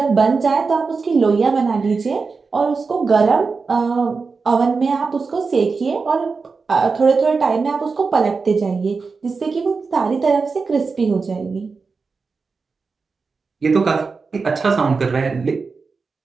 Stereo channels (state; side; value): quieter; left; 4.6 dB